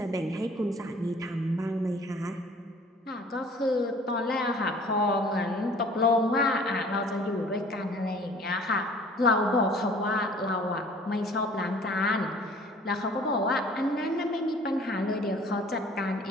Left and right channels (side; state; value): both; normal; correlation 0.51